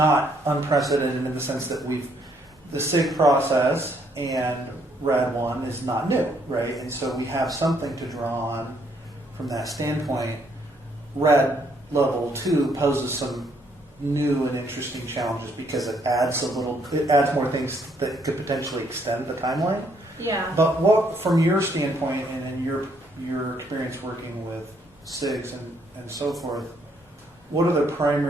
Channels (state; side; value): normal; both; correlation 0.70